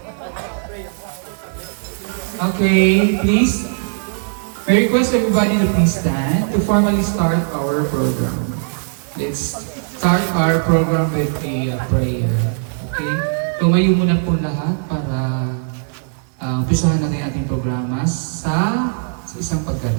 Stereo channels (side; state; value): left; silent; digital silence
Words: Okay, please. I request everybody to please stand to formally start our program. Let's start our program with a prayer. Okay? Tumayo muna po lahat para umpisahan natin ang ating programa sa isang